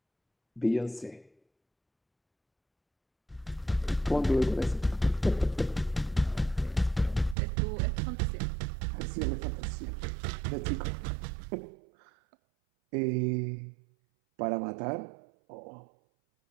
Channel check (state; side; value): drops out; left; at 7.4 s